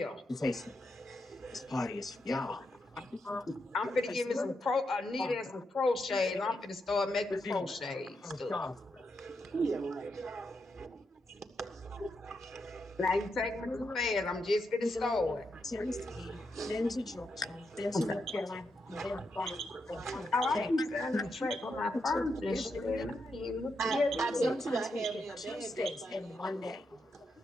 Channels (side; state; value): both; normal; correlation 0.83